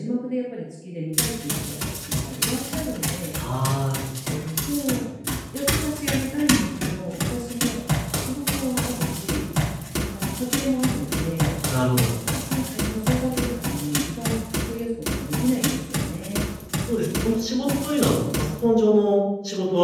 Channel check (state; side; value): identical; both; correlation 1.00